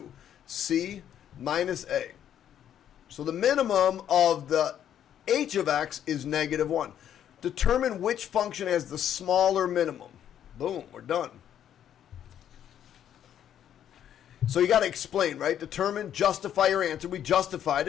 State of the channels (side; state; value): right; quieter; 10.1 dB